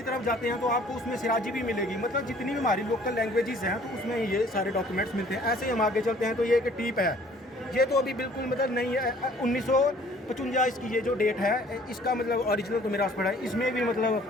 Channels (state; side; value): normal; both; correlation 0.55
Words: तरफ जाते हैं तो आपको उसमें सिराजी भी मिलेगी। मतलब जितनी भी हमारी लोकल लैंग्वेजेस हैं तो उसमें ये सारे डॉक्यूमेंट्स मिलते हैं। ऐसे ही हम आगे चलते हैं। तो ये एक टीप है। ये तो अभी बिल्कुल मतलब नहीं है। 1955 इसकी ये जो डेट है, इसका मतलब ओरिजिनल तो मेरे पास पड़ा है। इसमें भी